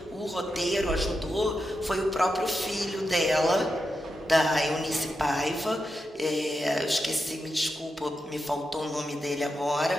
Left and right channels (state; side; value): normal; both; correlation 0.87